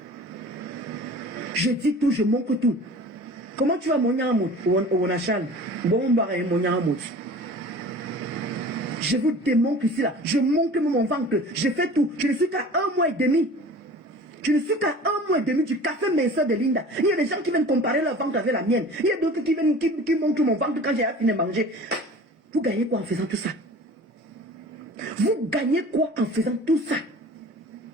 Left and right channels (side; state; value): both; normal; correlation 0.42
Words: Je dis tout, je manque tout. Comment tu vas mon yamot au Nachal? Bon, mon yamot. Je vous démontre ici là. Je montre mon ventre. Je fais tout. Je ne suis qu'à 1 mois et demi. Je ne suis qu'à 1 mois et demi du café minceur de Linda. Il y a des gens qui viennent comparer leur ventre avec la mienne. Il y a d'autres qui viennent qui montrent mon ventre quand j'ai fini de manger. Vous gagnez quoi en faisant tout ça? Vous gagnez quoi en faisant tout ça?